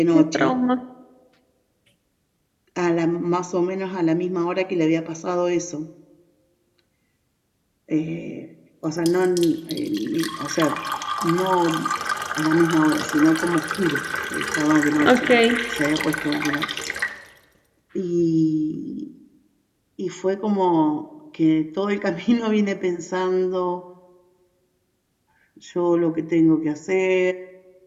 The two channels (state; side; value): identical; both; correlation 1.00